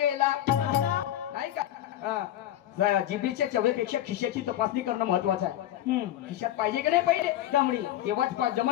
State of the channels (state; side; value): quieter; right; 12.6 dB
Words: नाही का? जिभेच्या चवेपेक्षा खिशाची तपासणी करणं महत्वाचं आहे. खिशात पाहिजे की नाही पाहिजे दमडी तेव्हाच